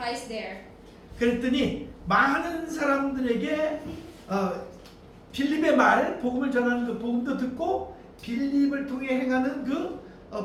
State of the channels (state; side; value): identical; both; correlation 1.00